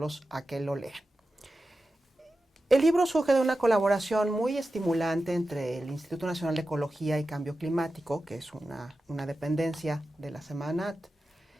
a que lo lean. El libro surge de una colaboración muy estimulante entre el Instituto Nacional de Ecología y Cambio Climático, que es una dependencia de la Semarnat,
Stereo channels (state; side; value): normal; both; correlation 0.93